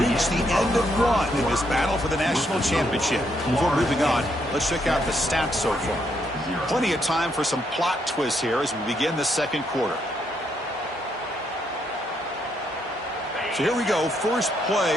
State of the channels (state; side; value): normal; both; correlation 0.75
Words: the end of one in this battle for the national championship. Before moving on, let's check out the stats so far. Plenty of time for some plot twists here as we begin the 2nd quarter. So here we go. First